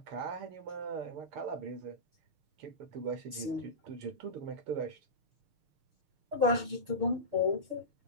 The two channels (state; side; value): late; left; 6.5 ms